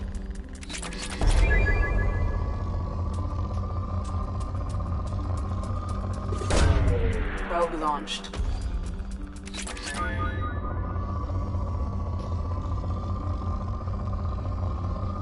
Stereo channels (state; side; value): identical; both; correlation 1.00